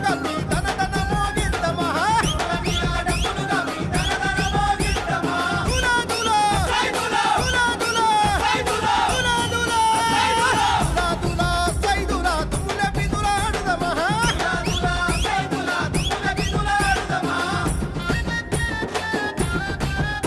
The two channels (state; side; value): identical; both; correlation 1.00